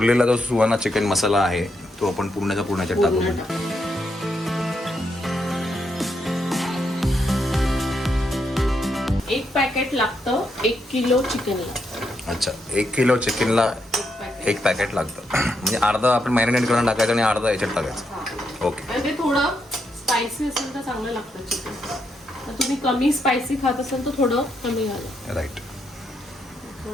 जो सुहाना चिकन मसाला आहे तो आपण पूर्णच्या पूर्णच्या टाकू. एक पॅकेट लागतं 1 किलो चिकनला. अच्छा, 1 किलो चिकनला 1 पॅकेट लागतं. म्हणजे अर्धा आपण मॅरिनेट करून टाकायचं आणि अर्धा याच्यात टाकायचं. ओके. आणि ते थोडं स्पायसी असेल तर चांगलं लागतं चिकन. तर तुम्ही कमी स्पायसी खात असाल तर थोडं कमी घाला. राईट.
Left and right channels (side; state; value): both; normal; correlation 0.80